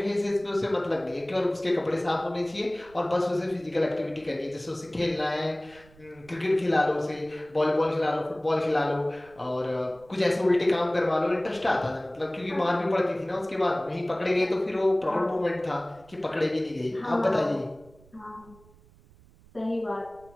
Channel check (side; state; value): right; noise; rumble, 26 dB below the sound